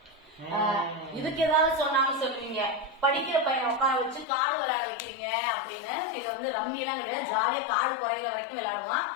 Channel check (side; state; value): right; drops out; at 4.2 s